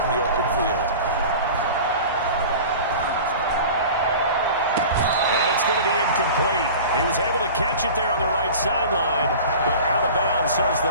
in the open field. And it's going to be incomplete. He was able to catch it there on the right sideline, but out of bounds, says the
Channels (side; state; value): both; inverted; correlation -0.38